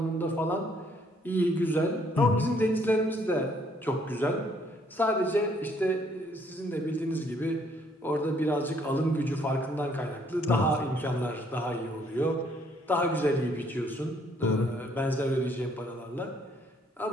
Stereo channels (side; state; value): both; normal; correlation 0.66